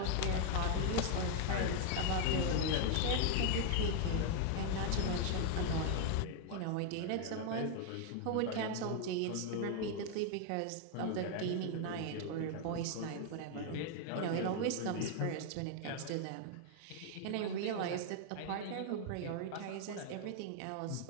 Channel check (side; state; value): both; different; correlation 0.00